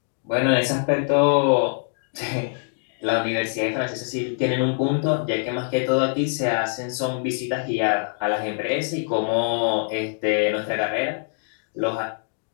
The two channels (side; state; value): right; silent; 63 dB below the other